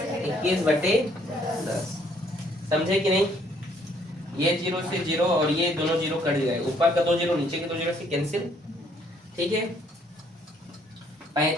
21/10, समझे कि नहीं। ये 0 से 0 और ये दोनों 0 कट गए, ऊपर का 2 0 नीचे के 2 0 से कैंसिल, ठीक है।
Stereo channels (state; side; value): normal; both; correlation 0.65